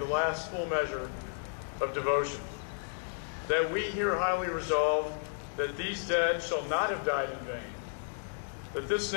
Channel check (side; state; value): right; silent; digital silence